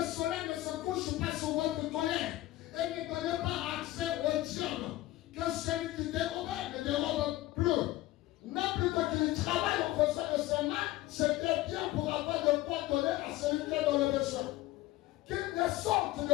soleil ne se couche pas sur votre colère. Et ne donnez pas accès au diable. Que celui qui dérobe ne dérobe plus. Mais plutôt qu'il travaille en faisant de ses mains, c'était bien pour avoir de quoi donner à celui qui est dans le besoin. Qu'il ne sorte de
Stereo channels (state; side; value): quieter; right; 16.5 dB